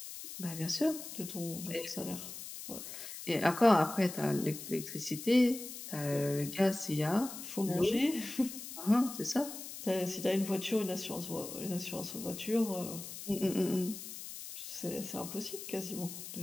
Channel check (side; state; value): left; noise; hiss, 10 dB below the sound